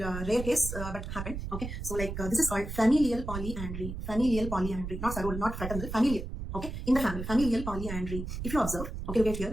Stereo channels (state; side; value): noise; right; rumble, 6 dB below the sound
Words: rare case, but happened. Okay, so this is called familial polyandry. Not sororal, not fraternal, familial. Okay, in the family, familial polyandry. If you observe, okay, look at